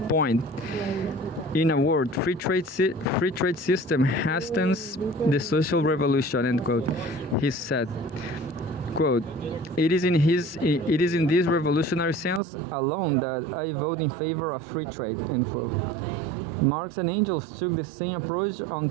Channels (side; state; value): left; drops out; at 12.4 s